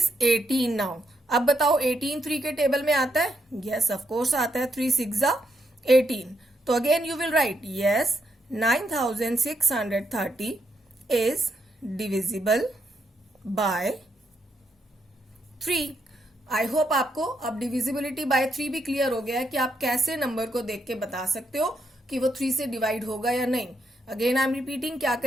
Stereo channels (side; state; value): both; normal; correlation 0.79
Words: 18 now. अब बताओ 18 3 के टेबल में आता है? यस ऑफ कोर्स आता है, 3 6 ज़ा 18। तो again you will right yes, 9630 is divisible by 3। I hope आपको अब डिविजिबिलिटी बाय 3 भी क्लियर हो गया है कि आप कैसे नंबर को देख के बता सकते हो कि वो 3 से डिवाइड होगा या नहीं। अगेन आई एम रिपीटिंग, क्या